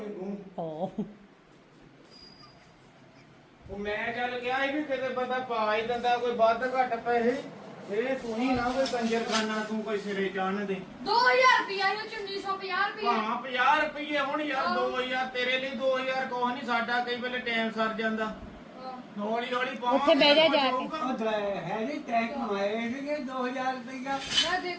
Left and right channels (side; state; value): both; identical; correlation 1.00